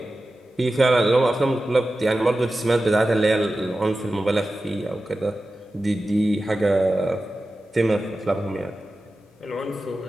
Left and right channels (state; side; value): normal; both; correlation 0.94